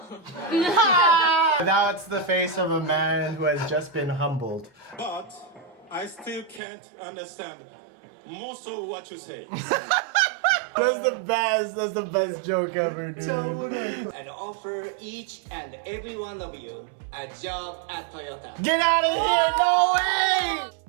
That's the face of a man who has just been humbled. But I still can't understand most of what you say. That's the best joke ever, dude. And offer each and every one of you a job at Toyota. Get out of here! No way!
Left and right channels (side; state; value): left; drops out; at 6.6 s